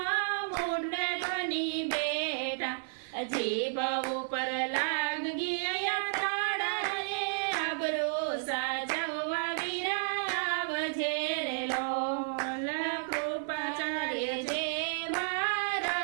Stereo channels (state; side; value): silent; left; 56 dB below the other